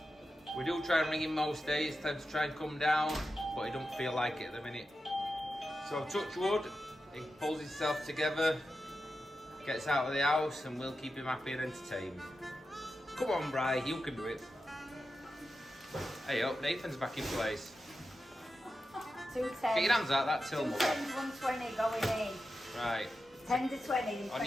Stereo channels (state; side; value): normal; both; correlation 0.91